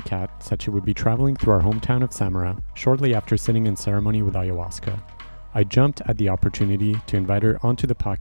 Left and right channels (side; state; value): both; inverted; correlation -1.00